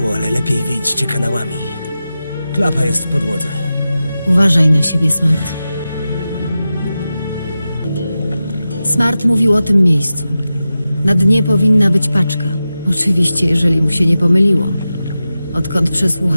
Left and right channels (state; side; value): inverted; both; correlation -0.93